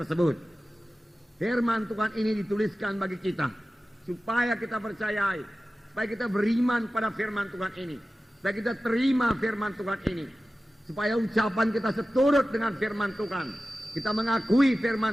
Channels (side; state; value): both; normal; correlation 0.95